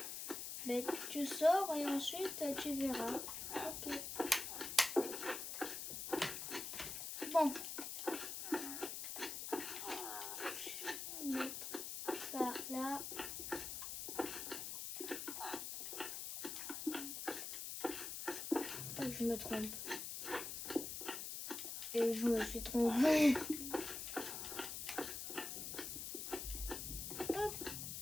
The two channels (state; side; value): noise; left; hiss, 5 dB below the sound